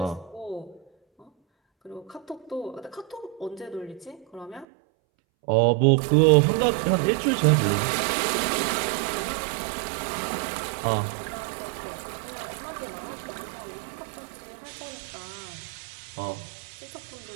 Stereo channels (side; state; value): left; drops out; at 4.7 s